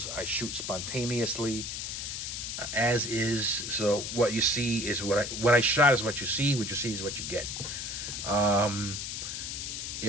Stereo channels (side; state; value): left; noise; hiss, 5 dB below the sound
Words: I shoot spontaneously, as is. So what you see is what I shot is what you see. What you see is what you get. Yeah,